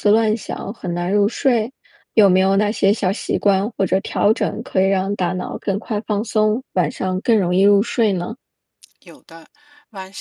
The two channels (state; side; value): identical; both; correlation 1.00